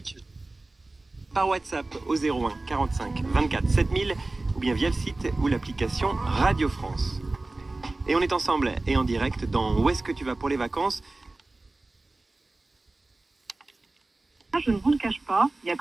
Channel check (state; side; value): quieter; left; 3.1 dB